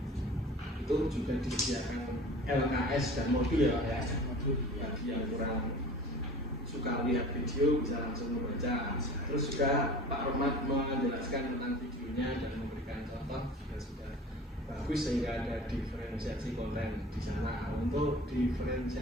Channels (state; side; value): normal; both; correlation 0.41